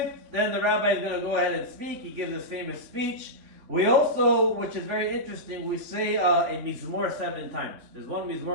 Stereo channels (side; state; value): left; late; 3.5 ms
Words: then the rabbi is going to go ahead and speak. He gives this famous speech. We also, which is very interesting, we say a mizmor 7 times. There's one